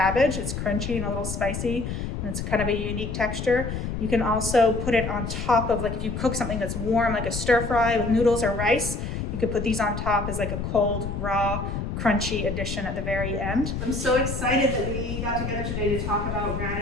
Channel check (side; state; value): left; noise; rumble, 4 dB below the sound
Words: It's crunchy and a little spicy, and it's kind of a unique texture. You can also put it on top of, like if you cook something that's warm, like a stir fry with noodles or rice, you could put these on top as like a cold, raw, crunchy addition at the very end. I'm so excited that we got together today to talk about